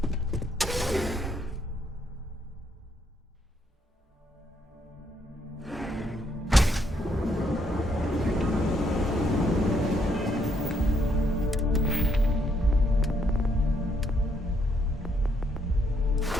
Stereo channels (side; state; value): both; normal; correlation 0.73